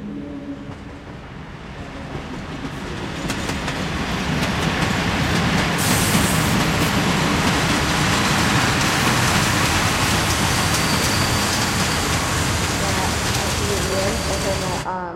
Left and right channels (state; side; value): identical; both; correlation 1.00